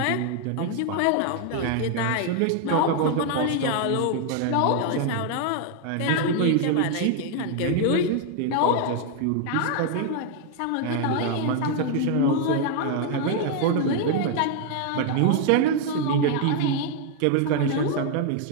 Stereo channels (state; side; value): different; both; correlation 0.00